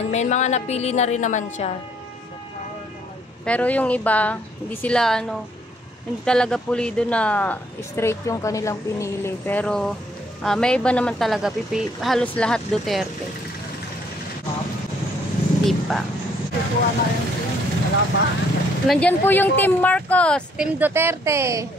may mga napili na rin naman siya. Pero yung iba, hindi sila hindi talaga pulido na straight yung kanilang pinili. Pero may iba naman talaga, halos lahat Duterte. Hindi pa. wala pa. Nandyan po yung Team Marcos, Team Duterte.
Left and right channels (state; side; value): normal; both; correlation 0.66